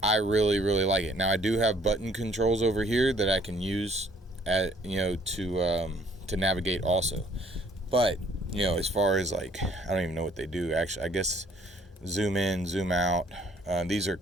I really, really like it. Now I do have button controls over here that I can use to navigate also, but as far as, like, I don't even know what they do actually. I guess zoom in, zoom out. These are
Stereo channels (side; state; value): both; normal; correlation 0.61